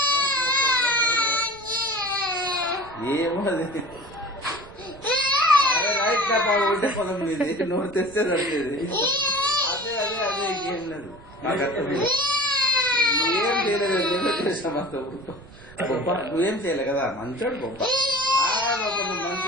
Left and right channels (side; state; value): right; noise; rumble, 21 dB below the sound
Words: ఏమో అది రైట్ ఉంటే పొలం మీద నోరు తెస్తే సరిలేదు. అదే అదే అదే ఇంకేం లేదు. నాకు అర్థం నువ్వేం చేయలేదు గొప్ప, నువ్వేం చేయలే కదా, మంచోడు గొప్ప. నువ్వు